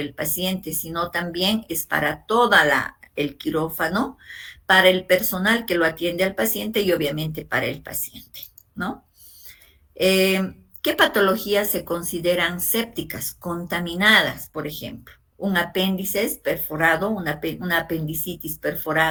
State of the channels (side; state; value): both; identical; correlation 1.00